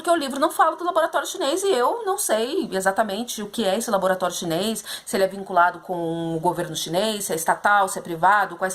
o livro não fala do laboratório chinês e eu não sei exatamente o que é esse laboratório chinês, se ele é vinculado com o governo chinês, se é estatal, se é privado, quais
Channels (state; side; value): identical; both; correlation 1.00